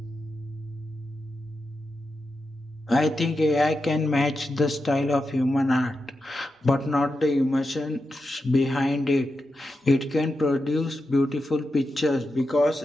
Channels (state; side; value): normal; both; correlation 0.88